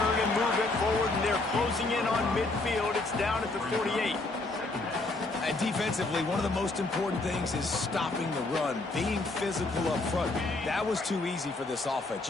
and move it forward, and they're closing in on midfield. It's down at the 48. And defensively, one of the most important things is stopping the run, being physical up front. That was too easy for this offense.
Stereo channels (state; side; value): quieter; right; 3.1 dB